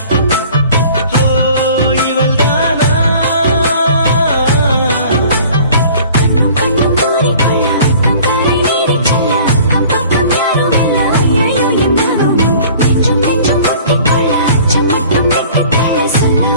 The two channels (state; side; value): inverted; both; correlation -0.48